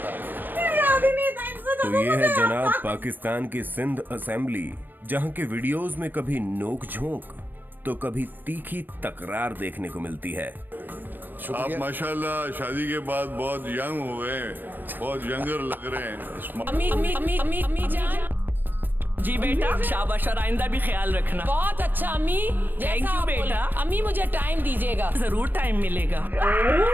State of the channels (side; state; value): left; late; 0.092 ms